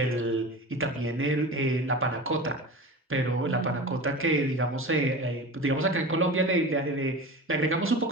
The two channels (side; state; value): both; normal; correlation 0.32